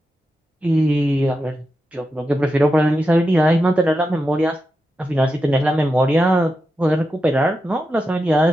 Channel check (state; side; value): normal; both; correlation 0.88